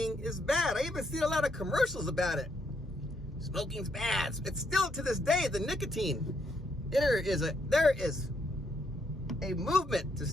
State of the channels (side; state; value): both; normal; correlation 0.74